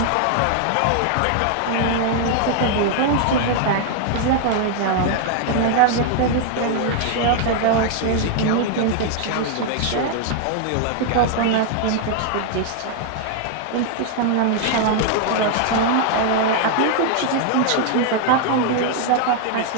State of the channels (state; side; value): different; both; correlation 0.00